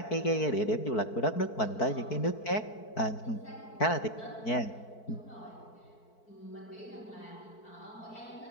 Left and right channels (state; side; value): late; right; 4.6 ms